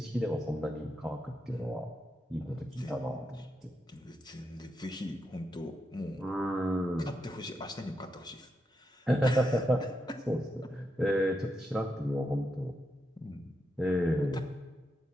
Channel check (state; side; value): normal; both; correlation 0.84